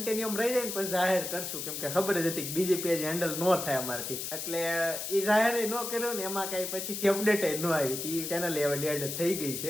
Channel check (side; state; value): left; noise; hiss, 5 dB below the sound